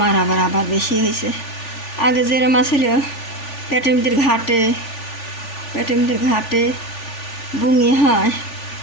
আবার বেশি হয়েছে। আগে যেরম ছিল পেটের মধ্যে ঘাটে বুঙি হয়,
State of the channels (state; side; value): late; right; 3.4 ms